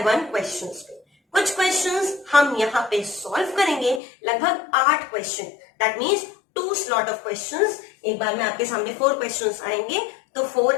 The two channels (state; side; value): drops out; right; at 4.0 s